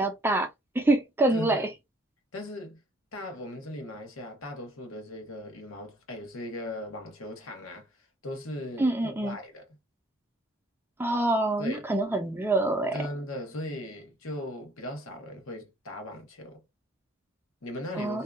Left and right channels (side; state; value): both; normal; correlation 0.61